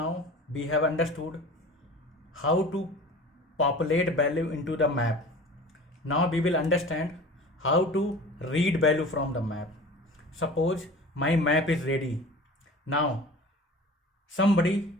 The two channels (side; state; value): both; normal; correlation 0.39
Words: we have understood how to populate value into the map. Now we will understand how to read value from the map. Suppose my map is ready. Now somebody